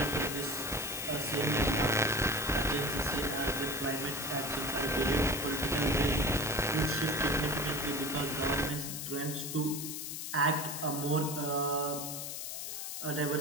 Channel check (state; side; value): noise; left; hiss, 6 dB below the sound